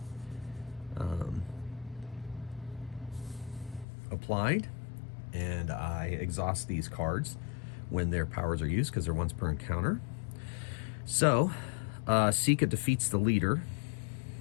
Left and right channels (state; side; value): drops out; right; at 3.9 s